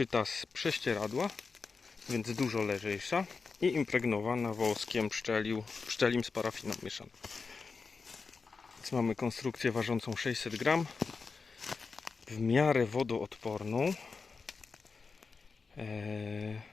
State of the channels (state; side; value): quieter; right; 4.7 dB